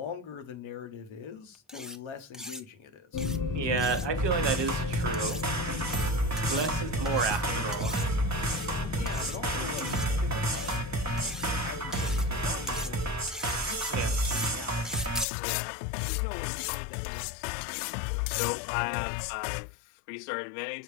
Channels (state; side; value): drops out; right; at 15.2 s